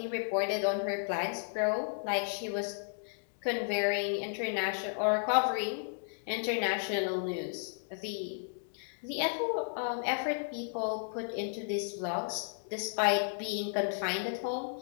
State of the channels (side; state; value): right; silent; digital silence